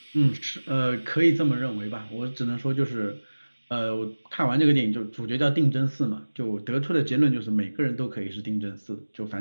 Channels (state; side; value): inverted; both; correlation -1.00